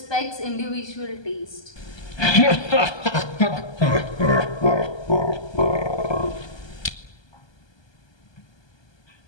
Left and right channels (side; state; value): right; late; 1.2 ms